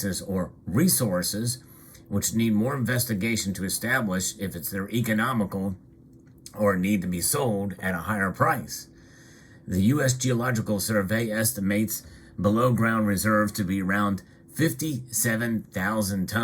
or resources, which need more investigation to establish if they're economical or need to be sold at a higher price. The U.S. Geological Survey estimates below ground reserves to be around 57,000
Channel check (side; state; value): both; identical; correlation 1.00